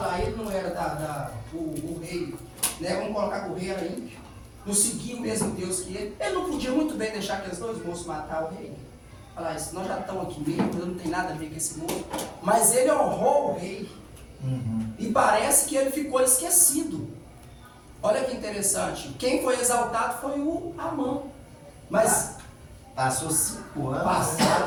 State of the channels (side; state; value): both; identical; correlation 1.00